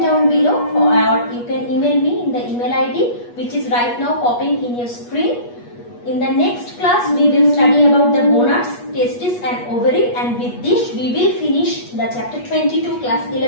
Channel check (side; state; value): right; late; 8.3 ms